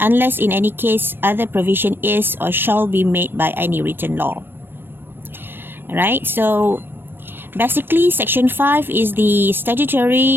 in any case other provision is or shall be made by any written law. Alright, so basically, Section 5 is the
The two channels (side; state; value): left; late; 0.098 ms